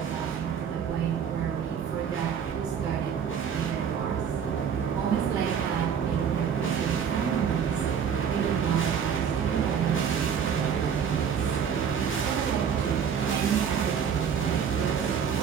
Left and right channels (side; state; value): left; quieter; 7.5 dB